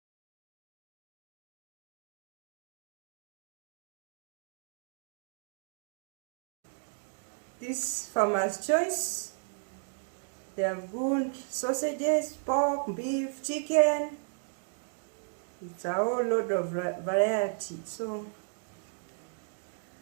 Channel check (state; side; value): silent; left; digital silence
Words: This Farmer's Choice. They have good sausages, pork, beef, chicken. It's a whole load of variety. So